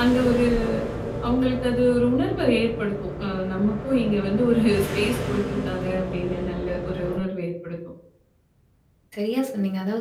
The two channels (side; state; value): both; identical; correlation 1.00